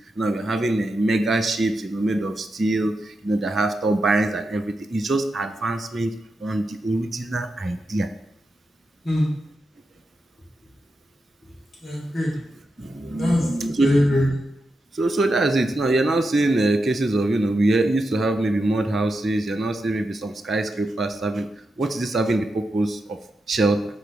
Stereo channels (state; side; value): normal; both; correlation 0.87